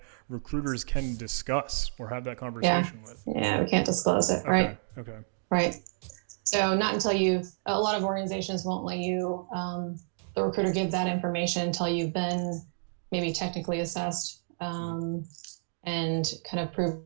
recruiters can discuss or have that conversation with. Yeah, we can't disclose it, right? Okay. Right. So not until a lot of organizations won't let you, the recruiter give that information until you've been maybe technically assessed and kind of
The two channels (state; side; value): silent; left; digital silence